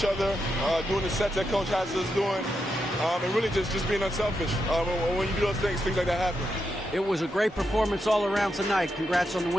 other, doing the sets that Coach has us doing, and really just being unselfish. When you do those things like that happen. It was a great performance all around tonight. Congrats on the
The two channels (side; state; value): both; normal; correlation 0.84